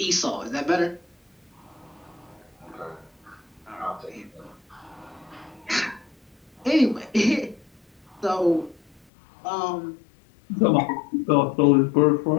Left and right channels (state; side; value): drops out; right; at 9.0 s